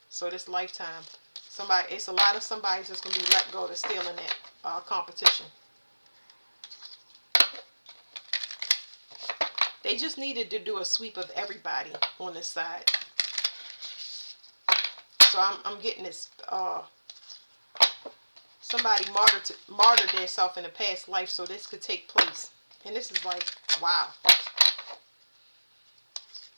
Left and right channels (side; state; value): both; inverted; correlation -1.00